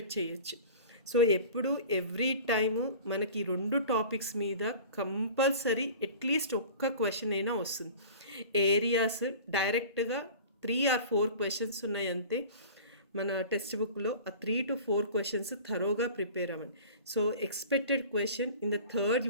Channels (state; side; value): inverted; both; correlation -0.40